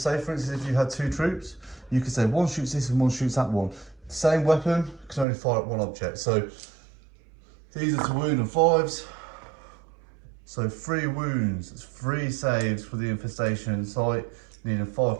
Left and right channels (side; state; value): left; drops out; at 5.2 s